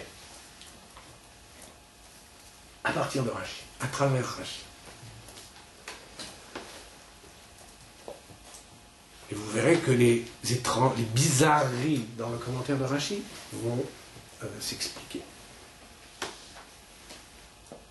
À partir de Rashi, à travers Rashi. Et vous verrez que les bizarreries dans le commentaire de Rashi vont s'expliquer.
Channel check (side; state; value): both; identical; correlation 1.00